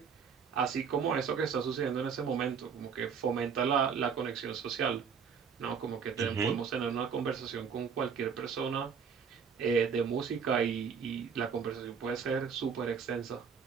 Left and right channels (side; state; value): left; quieter; 6.5 dB